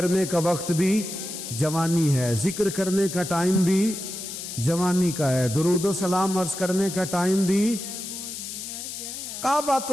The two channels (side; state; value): left; noise; hiss, 8 dB below the sound